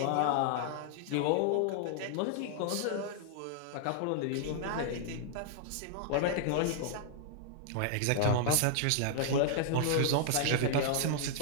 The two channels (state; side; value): different; both; correlation -0.01